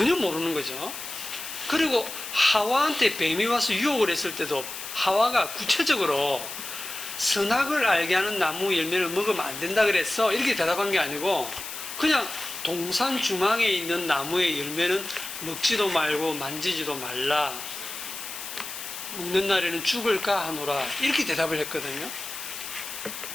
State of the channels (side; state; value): left; noise; hiss, 9 dB below the sound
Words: 모르는 거죠. 그리고 하와한테 뱀이 와서 유혹을 했을 때도 하와가 구체적으로 선악을 알게 하는 나무 열매를 먹으면 안 된다 그랬어. 이렇게 대답한 게 아니고 그냥 동산 중앙에 있는 나무의 열매는 먹지도 말고 만지지도 말라. 먹는 날에는 죽을까 하노라. 이렇게 대답을 했거든요.